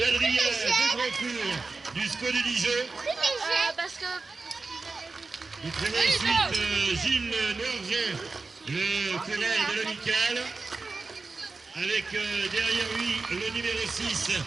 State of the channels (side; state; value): left; quieter; 3.9 dB